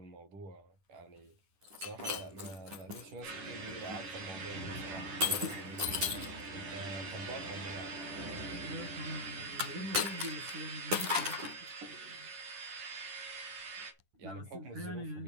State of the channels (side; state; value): left; late; 10 ms